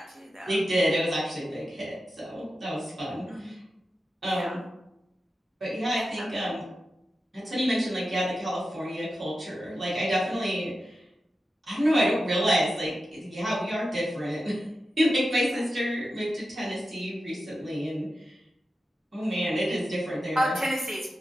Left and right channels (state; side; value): normal; both; correlation 0.91